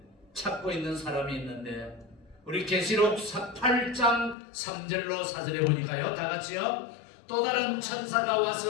찾고 있는 사람이 있는데, 우리 계시록 8장 3절로 4절에 보니까요, 다같이요, 또 다른 천사가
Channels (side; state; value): right; drops out; at 4.4 s